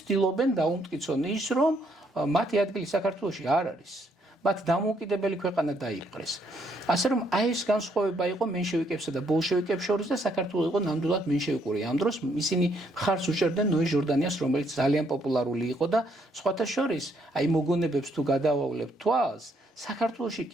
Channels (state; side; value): normal; both; correlation 0.71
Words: ცდილობენ დაუმტკიცონ ის, რომ მათი ადგილი საქართველოში არ არის. მათ დამოუკიდებელი ქვეყანა დაიპყრეს. ასე რომ აი ეს განსხვავება იყო მენშევიკებსა და ბოლშევიკებს შორის და საქართველოს იყო ნამდვილად მენშევიკური. ამ დროს ისინი მხარს უჭერდნენ ნოე ჟორდანიას, რომელიც ძალიან პოპულარული იყო და სხვათა შორის აი მოგონებებს თუ გადავავლებთ თვალს, საქართველოში